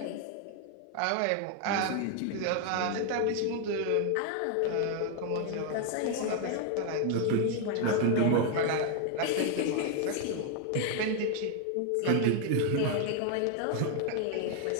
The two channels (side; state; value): both; different; correlation 0.00